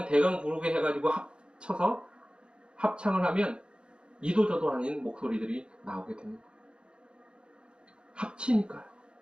대강 부르게 해가지고 합쳐서 합창을 하면 이도저도 아닌 목소리들이 나오게 됩니다. 합치니까요.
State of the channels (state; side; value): late; left; 0.054 ms